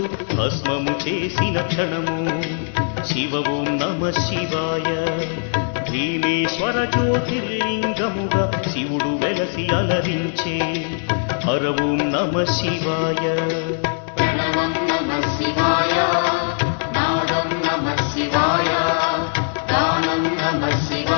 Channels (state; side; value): silent; right; 65 dB below the other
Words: భస్మము చేసిన క్షణము శివ ఓం నమః శివాయ భీమేశ్వర జ్యోతిర్లింగముగా శివుడు వెలసి అలరించే హర ఓం నమః శివాయ ప్రణవం నమః శివాయ నాదం నమః శివాయ గానం నమః